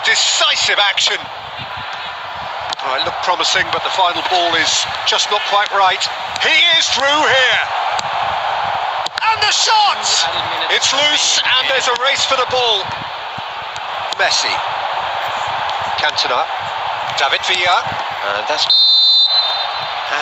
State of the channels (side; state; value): both; identical; correlation 1.00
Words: decisive action. Oh, it looked promising, but the final ball is just not quite right. He is through here. And the shot! It's loose, and there's a race for the ball. Messi. Cantona. David Villa. And